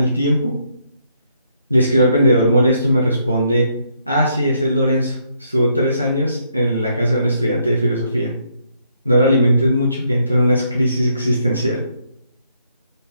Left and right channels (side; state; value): both; inverted; correlation -0.73